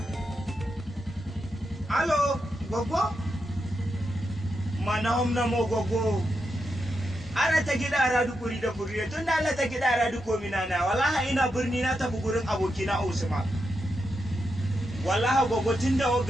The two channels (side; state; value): both; normal; correlation 0.85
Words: Alo, gwaggo? Mana homna mo gwaggo. Ara ta gida aradu kuri da kuri tun da Allah ta gida aradu ko minana wallahi ina birni na tafi gurin abokina Usman. Wallahi gwaggo tun da